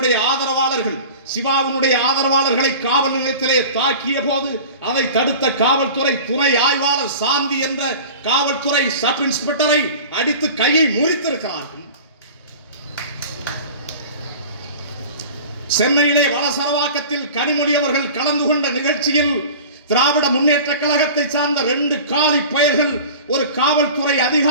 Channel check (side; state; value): both; inverted; correlation -0.39